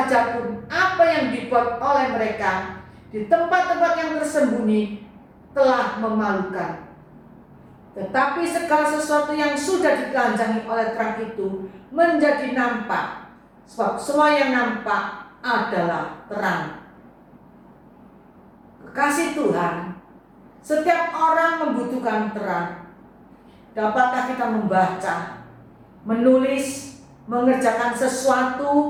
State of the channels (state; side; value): identical; both; correlation 1.00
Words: pun apa yang dibuat oleh mereka di tempat-tempat yang tersembunyi telah memalukan. Tetapi segala sesuatu yang sudah ditelanjangi oleh terang itu menjadi nampak, sebab semua yang nampak adalah terang. Kekasih Tuhan, setiap orang membutuhkan terang. Dapatkah kita membaca, menulis, mengerjakan